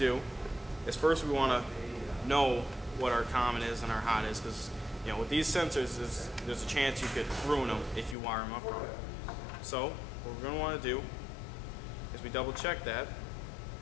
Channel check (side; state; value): right; drops out; at 8.2 s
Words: is first we want to know what our common is and our hot is, because with these sensors there's a chance you could ruin them if you wire them up wrong. So what we're going to want to do is we double check that,